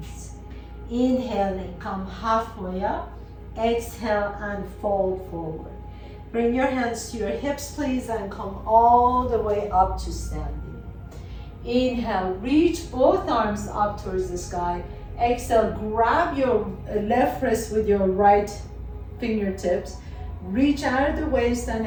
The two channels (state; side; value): identical; both; correlation 1.00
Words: Inhaling, come halfway up, exhale and fold forward. Bring your hands to your hips please and come all the way up to standing. Inhale, reach both arms up towards the sky. Exhale, grab your left wrist with your right fingertips. Reach out of the waist and